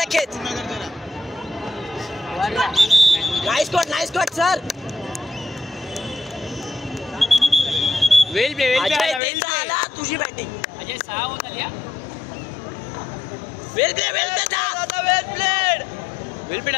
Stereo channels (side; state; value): right; drops out; at 9.2 s